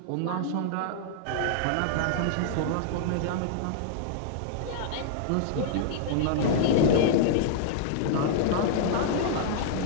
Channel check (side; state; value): both; different; correlation -0.01